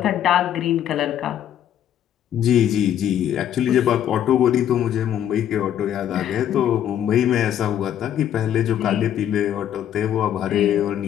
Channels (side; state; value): right; quieter; 10.4 dB